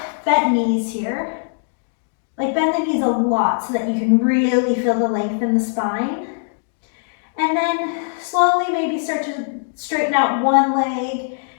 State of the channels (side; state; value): right; silent; digital silence